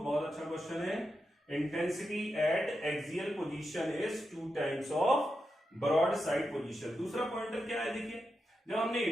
बहुत अच्छा क्वेश्चन है। Intensity at axial position is 2 times of broad side position. दूसरा पॉइंटर क्या है, देखिए जब हमने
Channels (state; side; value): normal; both; correlation 0.88